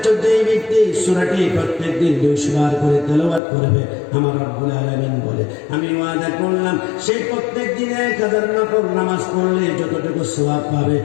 যেই ব্যক্তি সূরাটি প্রত্যেকদিন 200 বার করে তেলাওয়াত করবে, আমার রব্বুল আলামিন বলে আমি ওয়াদা করলাম সেই প্রত্যেক দিনে 1000 নফল নামাজ পড়লে যতটুকু সওয়াব পাবে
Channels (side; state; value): right; drops out; at 3.4 s